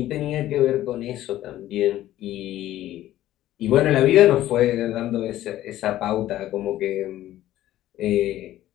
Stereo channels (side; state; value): right; quieter; 14.0 dB